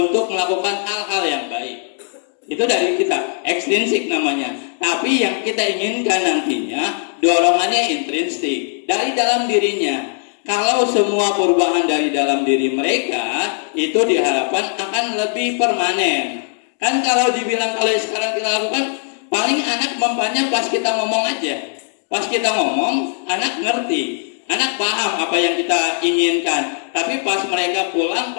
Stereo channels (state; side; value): silent; right; 59 dB below the other